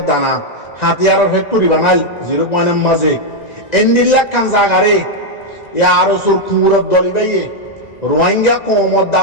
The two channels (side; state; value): right; late; 2.0 ms